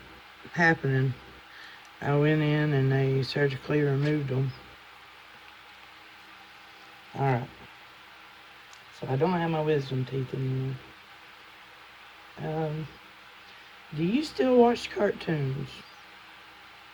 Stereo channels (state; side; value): identical; both; correlation 1.00